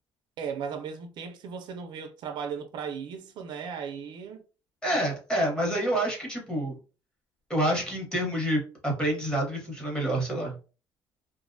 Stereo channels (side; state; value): both; normal; correlation 0.50